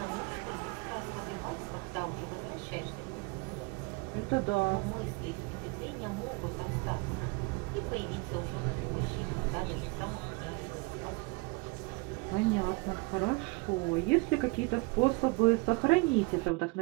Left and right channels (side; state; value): left; quieter; 26.1 dB